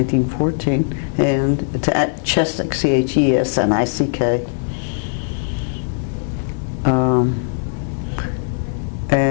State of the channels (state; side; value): silent; right; digital silence